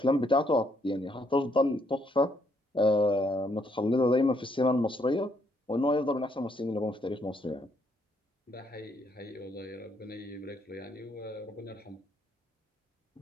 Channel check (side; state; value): both; normal; correlation 0.71